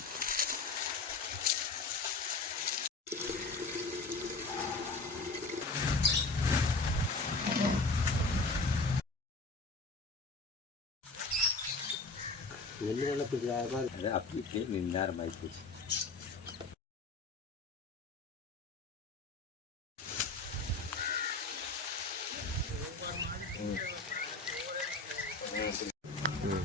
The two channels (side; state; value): right; quieter; 3.6 dB